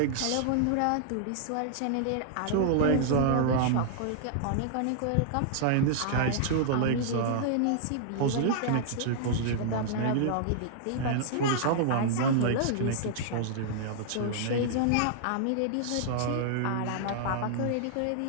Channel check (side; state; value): both; different; correlation -0.01